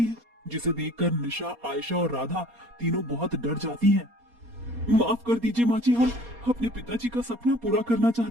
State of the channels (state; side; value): late; left; 4.2 ms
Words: है, जिसे देखकर निशा, आयशा और राधा तीनों बहुत डर जाती हैं। माफ कर दीजिए माँ जी, हम अपने पिताजी का सपना पूरा करना